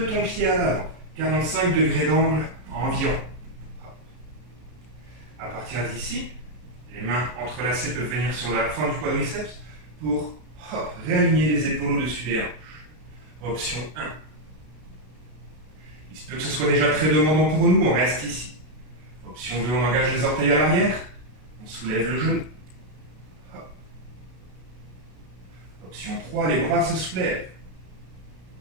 ton pied à l'avant, 45 degrés d'angle environ. Hop. À partir d'ici, les mains entrelacées peuvent venir sur la fin du quadriceps pour réaligner les épaules au-dessus des hanches. Option 1. Il se peut que ce soit déjà très demandant pour nous, on reste ici. Option 2, on engage les orteils à l'arrière, on soulève le genou. Hop. Option 3, les bras se soulèvent.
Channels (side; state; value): left; late; 33 ms